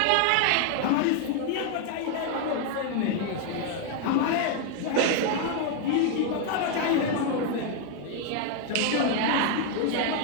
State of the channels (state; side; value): different; both; correlation 0.00